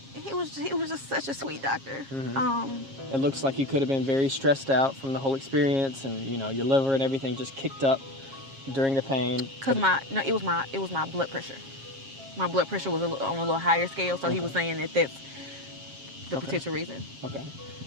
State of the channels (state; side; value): late; left; 7.4 ms